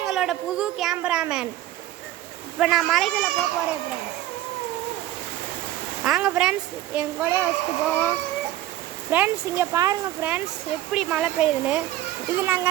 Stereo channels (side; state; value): left; quieter; 14.1 dB